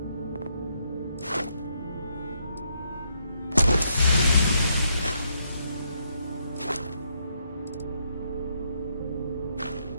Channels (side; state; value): both; inverted; correlation -0.76